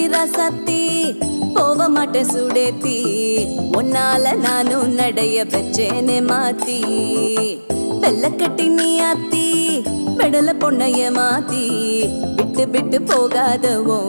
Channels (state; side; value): inverted; both; correlation -1.00